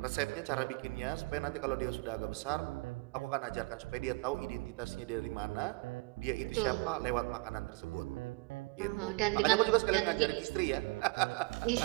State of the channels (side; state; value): left; quieter; 28.1 dB